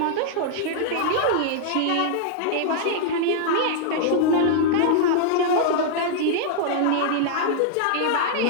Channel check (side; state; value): both; different; correlation -0.01